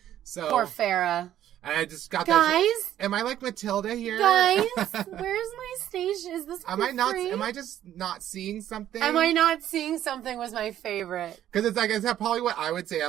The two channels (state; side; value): quieter; left; 11.7 dB